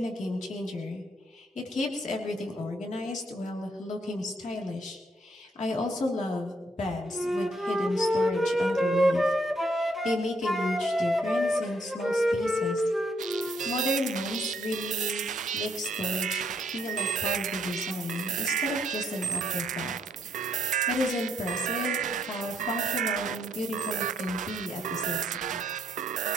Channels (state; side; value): normal; both; correlation 0.71